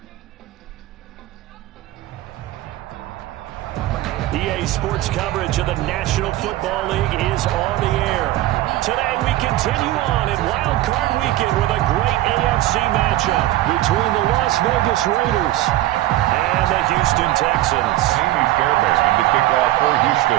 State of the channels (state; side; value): quieter; left; 15.7 dB